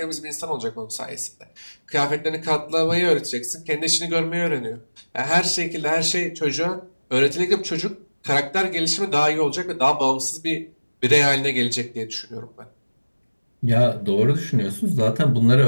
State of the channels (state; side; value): inverted; both; correlation -1.00